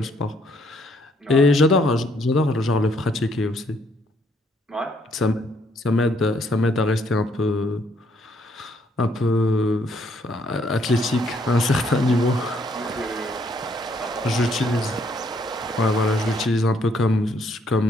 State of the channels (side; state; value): both; normal; correlation 0.69